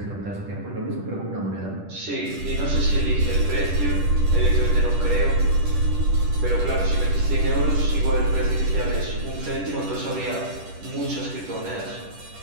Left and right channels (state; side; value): late; left; 10 ms